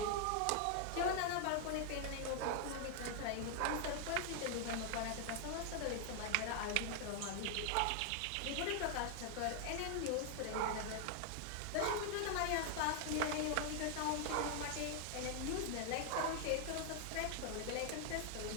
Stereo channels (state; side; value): different; both; correlation 0.00